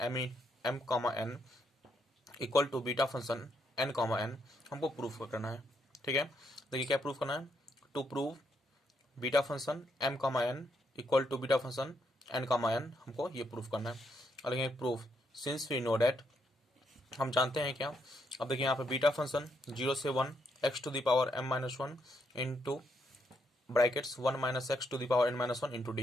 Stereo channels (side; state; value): both; normal; correlation 0.77